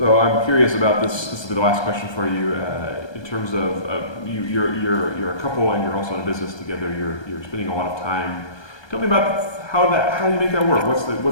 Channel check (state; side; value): late; right; 1.2 ms